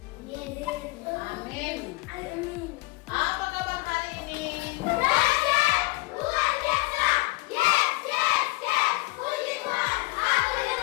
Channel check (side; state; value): right; quieter; 22.7 dB